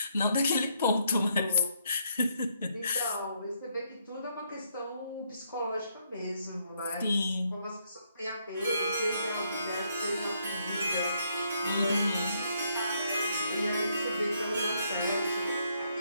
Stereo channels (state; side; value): inverted; both; correlation -0.73